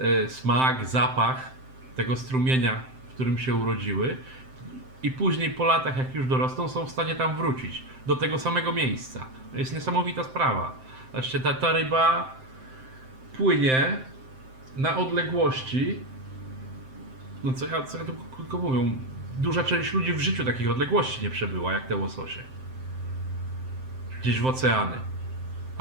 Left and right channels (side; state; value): left; late; 7.7 ms